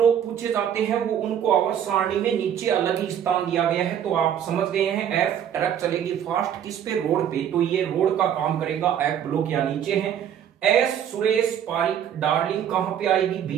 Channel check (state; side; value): quieter; left; 9.4 dB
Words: पूछे जाते हैं वो उनको आवर्त सारणी में नीचे अलग ही स्थान दिया गया है। तो आप समझ गए हैं, एफ ट्रक चलेगी फास्ट किस पे, रोड पे, तो ये रोड का काम करेगा, एफ ब्लॉक या नीचे है। एस सुरेश पारिक डार्लिंग कहां पे आएगी,